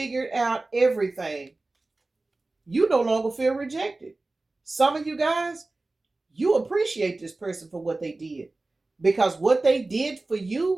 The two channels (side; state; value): left; quieter; 3.1 dB